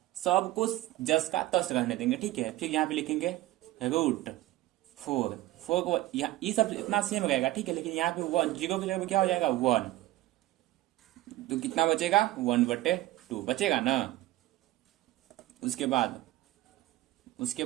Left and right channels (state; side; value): quieter; left; 16.3 dB